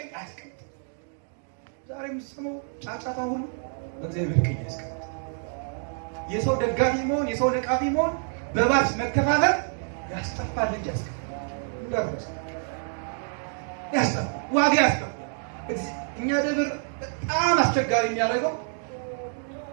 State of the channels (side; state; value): left; silent; 58 dB below the other